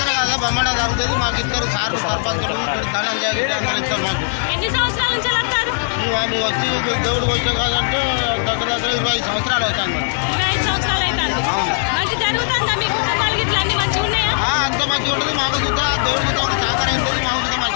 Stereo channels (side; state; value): right; silent; digital silence